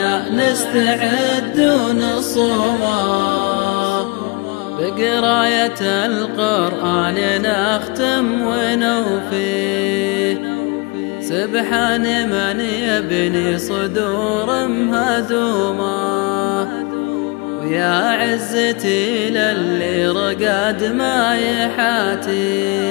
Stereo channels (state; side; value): quieter; right; 28.2 dB